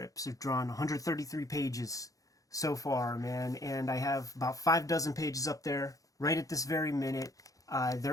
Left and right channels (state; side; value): late; right; 0.17 ms